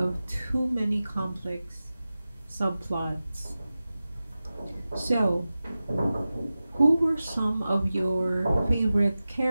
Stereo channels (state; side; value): inverted; both; correlation -0.95